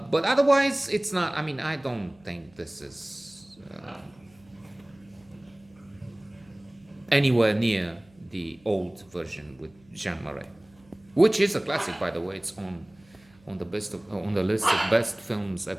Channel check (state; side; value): noise; right; hum, 29 dB below the sound